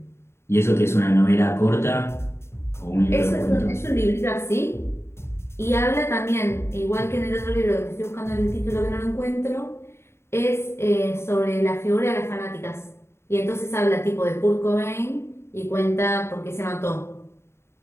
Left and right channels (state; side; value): late; right; 0.12 ms